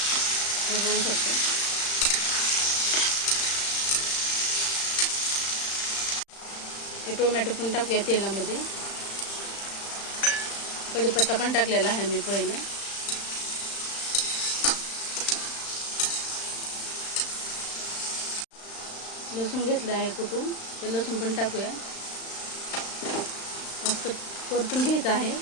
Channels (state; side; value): late; right; 35 ms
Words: बघू शकता. हे टोमॅटो पण टाकूया तेलामध्ये. कढीपत्ता पण टाकलेला आहे मी पहिले. लसूण घेतलं आहे कुटून, ते लसूण पण टाकूया. मस्त परतून घ्यायचं आहे